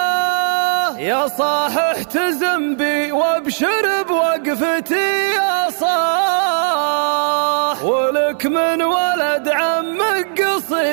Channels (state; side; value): silent; left; 57 dB below the other